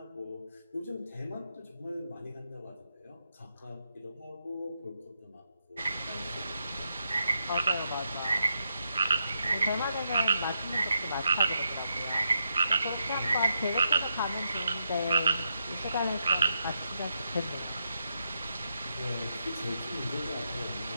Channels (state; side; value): inverted; both; correlation -0.83